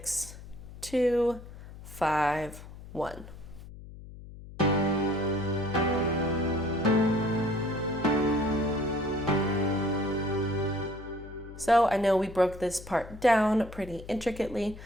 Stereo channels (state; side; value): noise; left; hum, 15 dB below the sound